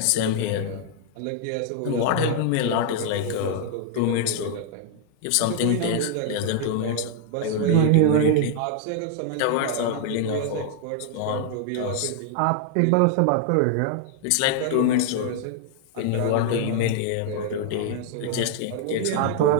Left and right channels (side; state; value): both; different; correlation 0.00